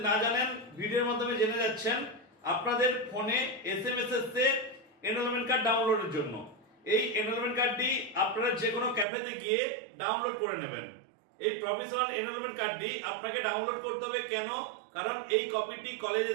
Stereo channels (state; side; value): drops out; left; at 9.1 s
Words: না জানেন ভিডিওর মাধ্যমে জেনে যাচ্ছেন। আপনাদের ফোনে এসএমএস এসছে এনরোলমেন্ট কার্ড ডাউনলোডের জন্য। এই এনরোলমেন্ট কার্ডটি আপনারা যে কোনো ক্যাফেতে গিয়ে ডাউনলোড করে নেবেন। এই প্রফেশনাল এনরোলমেন্ট কার্ডটি আপনাকে ডাউনলোড করতে হবে কেন? কারণ এই কপিটি কলেজে